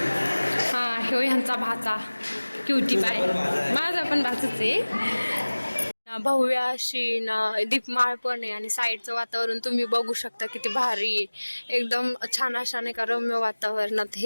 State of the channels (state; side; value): inverted; both; correlation -1.00